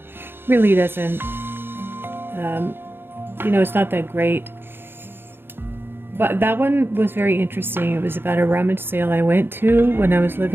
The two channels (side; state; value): left; late; 0.10 ms